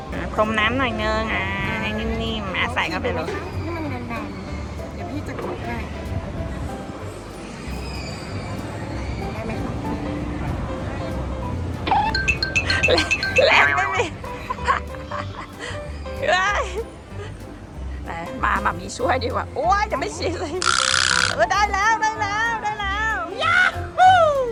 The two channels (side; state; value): both; identical; correlation 1.00